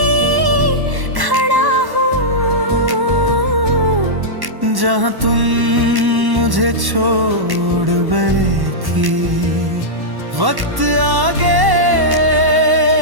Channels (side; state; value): left; late; 1.1 ms